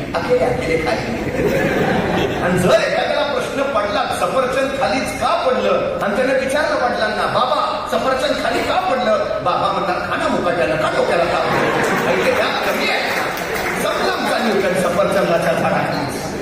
अकेले काय. आणि जर एखाद्याला प्रश्न पडला सफरचंद खालीच का पडलं आणि त्याने विचारलं वडिलांना, बाबा सफरचंद खाली का पडलं? बाबा म्हणतात खाना मुकाट्याला का डोक्याला का कमी आहे. समजा न्यूटन सफरचंदाच्या झाडाखाली.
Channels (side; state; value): both; identical; correlation 1.00